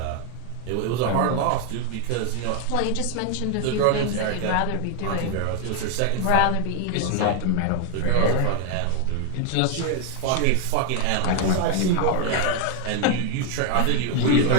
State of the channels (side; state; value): both; different; correlation 0.01